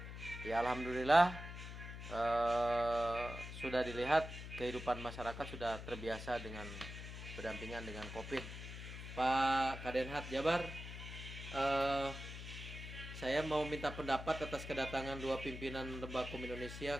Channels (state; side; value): noise; left; hum, 9 dB below the sound